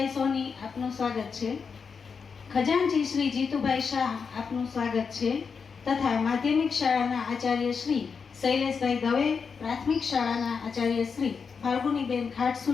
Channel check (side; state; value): right; quieter; 5.7 dB